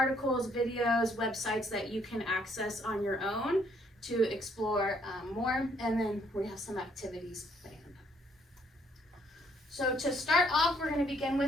videos, websites that you can access on your own to explore more. And then we have some activities planned. So to start off, we're going to begin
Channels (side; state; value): both; normal; correlation 0.68